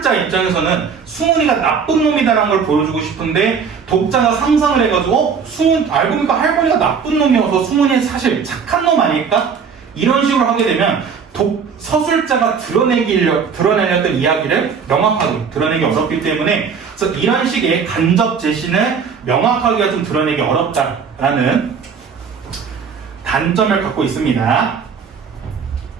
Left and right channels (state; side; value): quieter; left; 6.2 dB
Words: 입장에서는 승훈이가 나쁜 놈이다라는 걸 보여주고 싶은데, 독자가 상상을 해가지고 알고 보니까 할머니가 나쁜 놈이어서 승훈이 사실 착한 놈 아닐까? 이런 식으로 하게 되면 서술자가 드러내려던 이야기를 명확하게 드러내기 어렵기 때문에, 그래서 이런 식의 간접 제시는 명확하게 좀 드러내기 어렵다라는 단점을 갖고 있습니다.